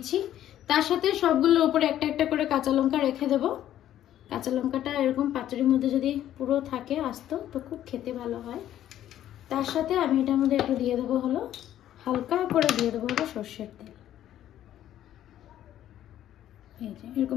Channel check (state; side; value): quieter; right; 11.9 dB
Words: তার সাথে সবগুলোর উপরে একটা একটা করে কাঁচা লঙ্কা রেখে দেব। কাঁচা লঙ্কাটা এরকম পাতুরির মধ্যে যদি পুরো থাকে আস্ত তো খুব খেতে ভালো হয়। তার সাথে আমি এটার মধ্যে একটু দিয়ে দেবো হলো হালকা করে দিয়ে দেবো হলো সর্ষের তেল। এই যে